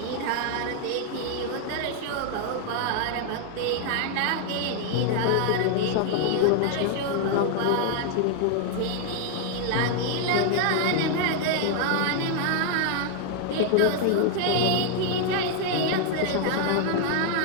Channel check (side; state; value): both; different; correlation 0.00